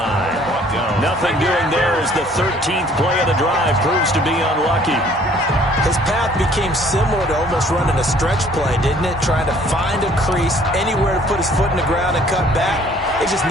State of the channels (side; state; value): both; normal; correlation 0.57